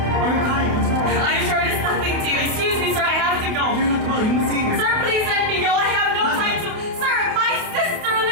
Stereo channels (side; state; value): left; late; 28 ms